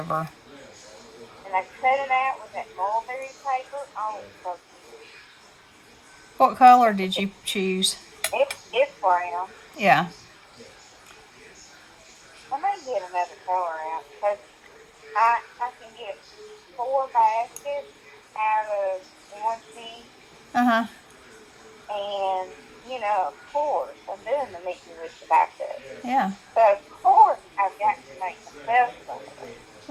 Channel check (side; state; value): both; identical; correlation 1.00